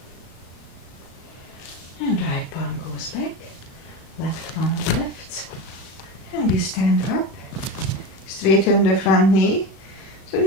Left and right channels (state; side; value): late; right; 36 ms